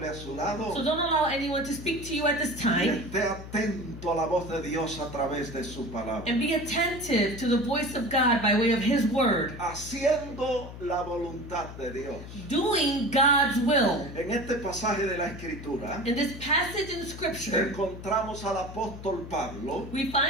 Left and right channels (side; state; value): left; noise; hum, 12 dB below the sound